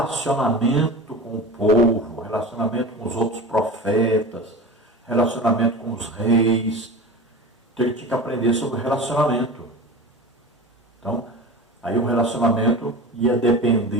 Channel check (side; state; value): both; normal; correlation 0.32